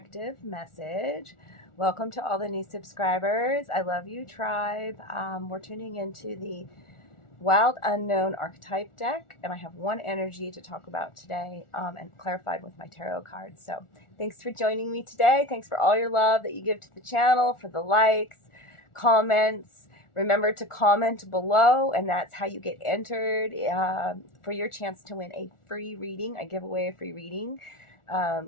message. Welcome to all the new subscribers. I love you, tribe. We're tuning into the Wild Unknown Archetype deck, and I have one energy to talk about today and clarified with my tarot cards. So thanks for joining me today. Thanks for all your love that you give to the channel, for the likes, comments. Remember to comment below, and that's how you get entered for your chance to win a free reading. I give away a free reading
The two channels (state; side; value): late; right; 1.4 ms